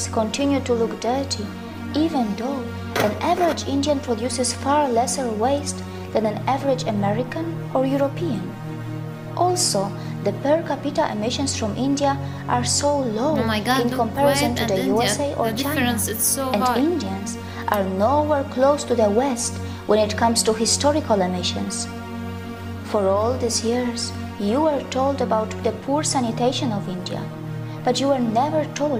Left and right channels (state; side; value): identical; both; correlation 1.00